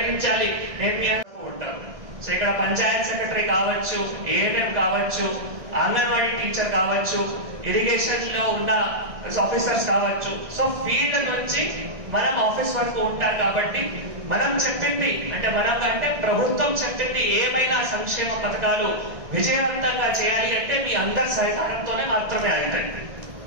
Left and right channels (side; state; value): left; late; 1.6 ms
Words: నేను మీ అందరూ ఉంటాను. సో ఇక్కడ పంచాయత్ సెక్రటరీ కావచ్చు, ఏఎన్ఎం కావచ్చు, అంగన్వాడీ టీచర్ కావచ్చు, ఇరిగేషన్ లో ఉన్న ఆఫీసర్స్ కావచ్చు. సో ఫీల్డ్ నుంచి మనం ఆఫీస్ వరకు ఉంటారు. కాబట్టి మనం చెప్పింది అంటే ప్రభుత్వం చెప్పింది ఏమైనా సంక్షేమ పథకాలు విజయవంతంగా చేయాలి అంటే మీ అందరి సహకారంతోనే మాత్రమే అవుతాయి.